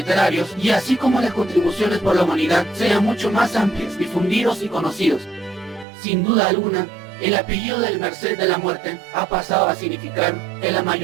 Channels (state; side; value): drops out; left; at 5.9 s